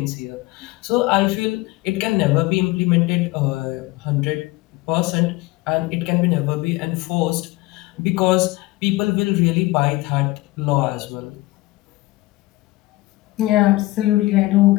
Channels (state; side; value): quieter; right; 20.0 dB